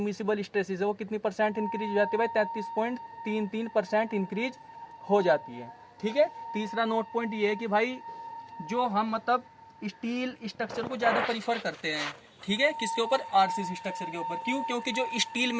स्ट्रेसेस है वो कितनी परसेंट इंक्रीज हो जाती है भाई? 33.33% इंक्रीज हो जाती है। ठीक है, तीसरा नोट पॉइंट ये है कि भाई जो हम मतलब स्टील स्ट्रक्चर को ज्यादा प्रीफर करते हैं, ठीक है, किसके ऊपर? आरसीसी स्ट्रक्चर के ऊपर। क्यों? क्योंकि जो स्टील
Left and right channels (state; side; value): identical; both; correlation 1.00